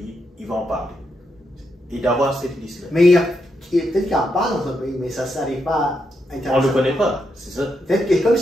il va en parler. Et d'avoir cette liste-là. Mais peut-être qu'il en parle dans son pays, mais ça ne s'arrive pas on ne le connaît pas, c'est ça. Peut-être que, comme je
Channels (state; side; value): normal; both; correlation 0.82